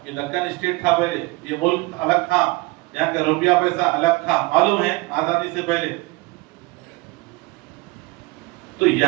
یہ دکن اسٹیٹ تھا پہلے، یہ ملک الگ تھا، یہاں کا روپیہ پیسہ الگ تھا، معلوم ہے آزادی سے پہلے. تو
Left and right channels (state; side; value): quieter; left; 23.0 dB